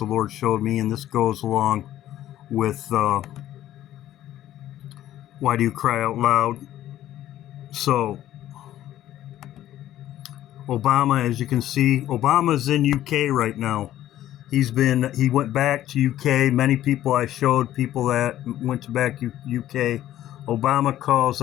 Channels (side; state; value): right; quieter; 13.0 dB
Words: Lord showed me, and this goes along with why do you cry out loud? So Obama, as you can see, Obama's in UK right now. He went back to UK. Many people I showed, people that went back to UK. Obama calls